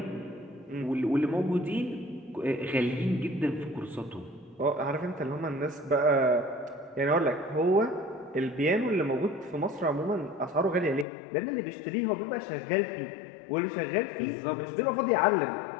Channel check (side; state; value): right; drops out; at 11.1 s